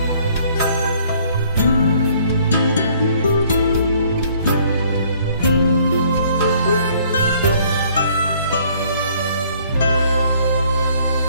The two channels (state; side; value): inverted; both; correlation -0.61